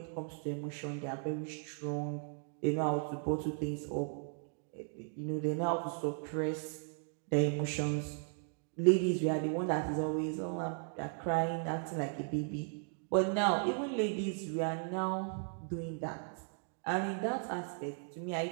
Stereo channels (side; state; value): left; silent; 53 dB below the other